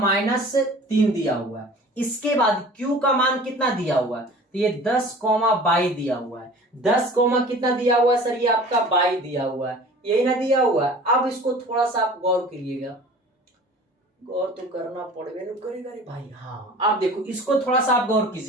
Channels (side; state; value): both; normal; correlation 0.43